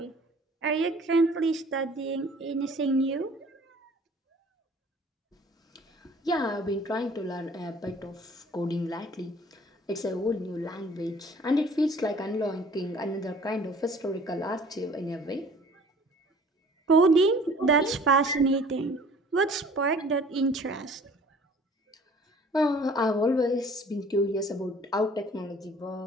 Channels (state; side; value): normal; both; correlation 0.51